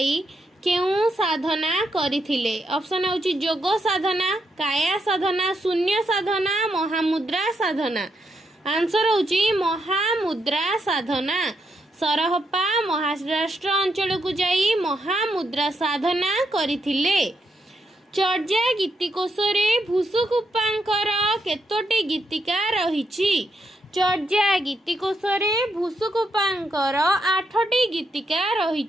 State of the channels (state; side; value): normal; both; correlation 0.80